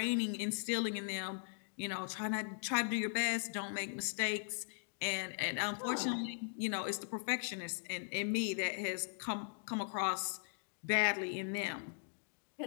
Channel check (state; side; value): silent; right; digital silence